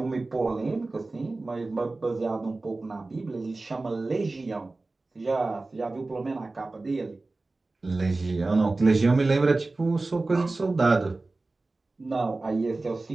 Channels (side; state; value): left; quieter; 3.3 dB